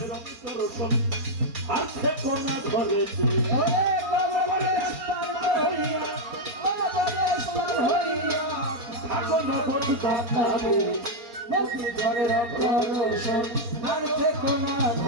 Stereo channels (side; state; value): left; late; 4.3 ms